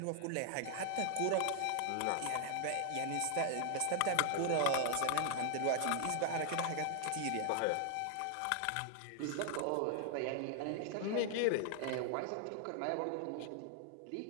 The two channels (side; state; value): both; different; correlation 0.00